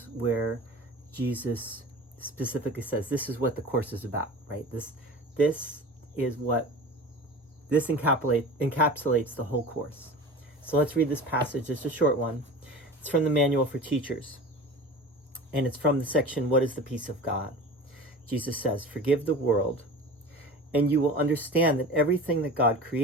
where Jesus specifically says, this is what the Course is about, right? This encapsulates the whole Course. So let's read this passage. It's a short one. It's from the Manual for Teachers. And it's from the section, What is the Peace of God? Jesus says, forgive the world, and you will understand that everything that God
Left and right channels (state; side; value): normal; both; correlation 0.36